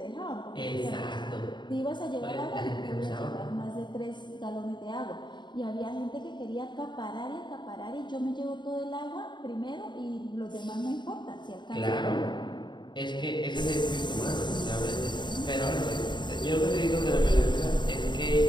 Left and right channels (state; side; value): late; right; 0.22 ms